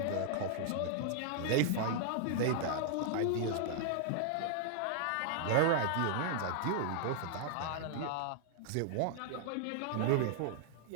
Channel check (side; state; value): both; different; correlation -0.01